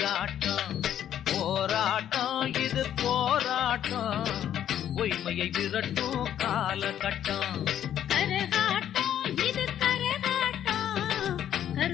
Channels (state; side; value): quieter; right; 10.5 dB